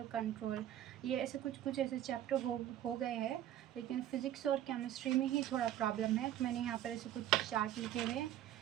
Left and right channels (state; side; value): quieter; left; 12.0 dB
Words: control, ये ऐसे कुछ ऐसे चैप्टर हो गए हैं, लेकिन फ़िज़िक्स और केमिस्ट्री में ही थोड़ा प्रॉब्लम है। तो मैंने यहाँ पर ऐसे कुछ चार्ट लिखे हुए हैं,